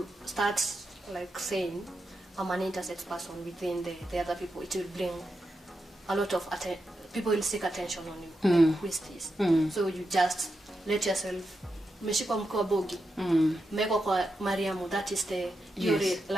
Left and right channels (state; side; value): normal; both; correlation 0.87